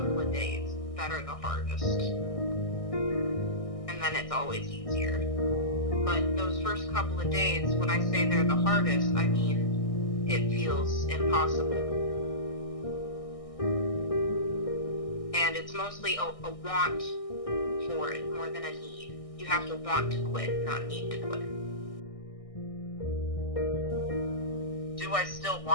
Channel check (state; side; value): late; right; 1.6 ms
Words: of days that are the hardest. And then it's always easier. But those first couple of days, when I say they're the hardest, I mean it feels impossible. And it's mostly a want for it more than a need. You have to want to quit, not need to quit. Do I still